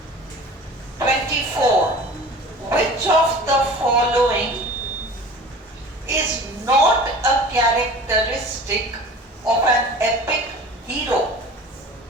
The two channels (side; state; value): both; normal; correlation 0.41